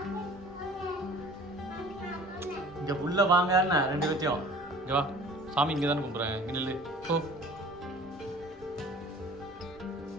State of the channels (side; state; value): both; normal; correlation 0.47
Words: இங்க உள்ள வாங்க ரெண்டு பேத்தையும் இங்க வா. சாமி இங்க தானே கும்பிட்றேன். இங்க நில்லு போ.